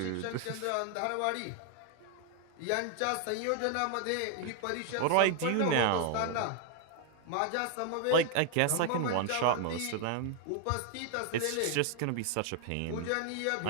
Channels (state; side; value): different; both; correlation 0.00